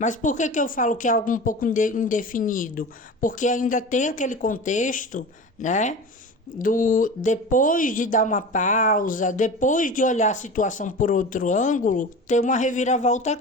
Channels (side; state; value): both; normal; correlation 0.33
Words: por que eu falo que é algo um pouco indefinido? Porque ainda tem aquele contexto, né? Depois de dar uma pausa, depois de olhar a situação por outro ângulo, tem uma reviravolta